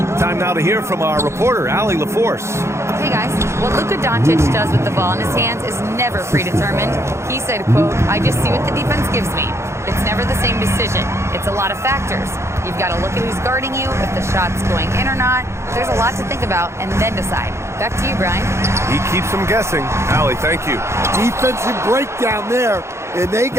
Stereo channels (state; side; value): late; left; 0.13 ms